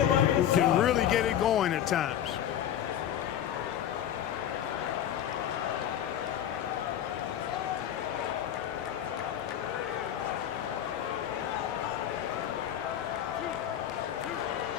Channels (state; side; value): quieter; right; 10.5 dB